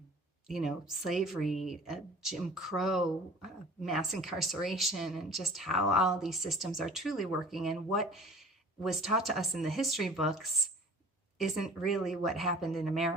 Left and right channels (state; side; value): normal; both; correlation 0.47